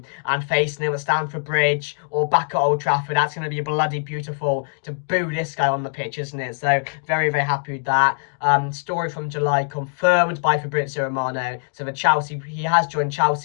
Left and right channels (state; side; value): silent; right; 64 dB below the other